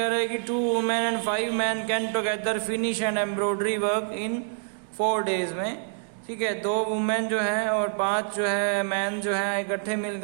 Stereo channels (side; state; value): left; silent; digital silence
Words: रहे हैं कि 2 women and 5 man can together finish and embroidery work in 4 days में. ठीक है, 2 वुमेन जो है और 5 जो है मैन जो है इकट्ठे